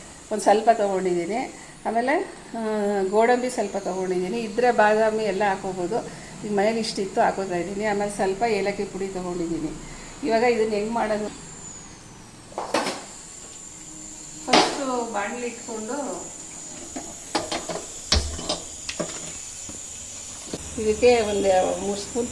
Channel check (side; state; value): both; identical; correlation 1.00